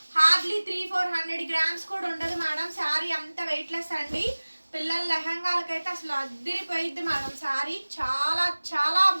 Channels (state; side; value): inverted; both; correlation -1.00